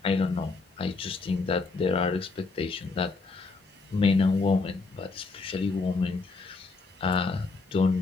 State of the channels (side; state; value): right; quieter; 4.0 dB